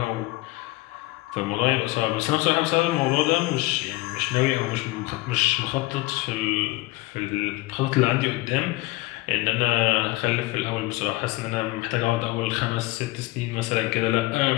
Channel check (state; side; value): quieter; right; 20.7 dB